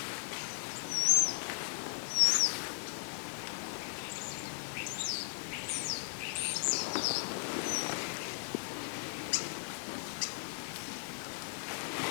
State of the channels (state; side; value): silent; right; 53 dB below the other